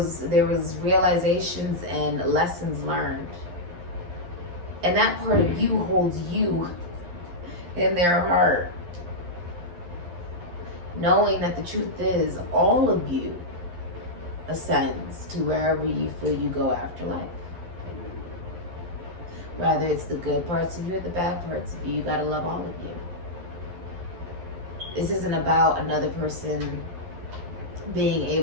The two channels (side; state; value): left; late; 11 ms